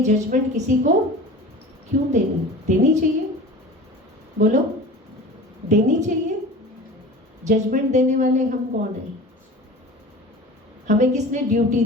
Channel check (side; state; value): both; normal; correlation 0.37